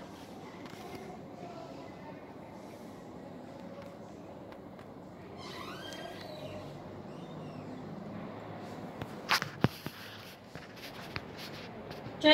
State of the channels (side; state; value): both; identical; correlation 1.00